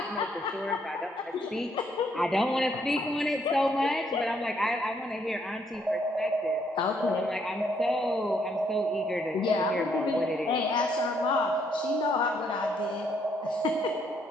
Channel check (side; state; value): both; normal; correlation 0.71